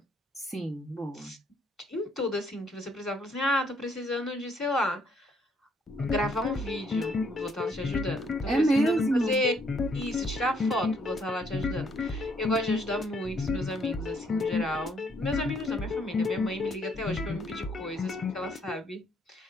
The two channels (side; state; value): both; normal; correlation 0.68